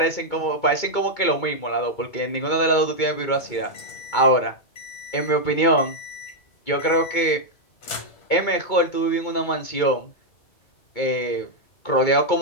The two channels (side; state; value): right; late; 2.2 ms